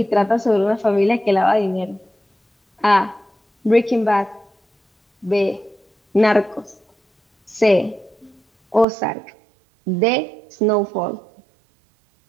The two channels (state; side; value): drops out; left; at 8.8 s